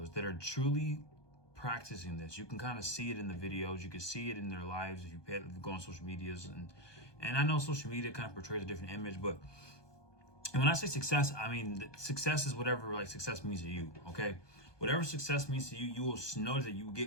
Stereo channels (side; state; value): right; late; 1.2 ms